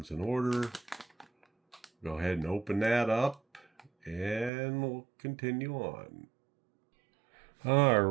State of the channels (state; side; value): drops out; left; at 4.5 s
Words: in order. Go ahead and open that up and we'll continue on.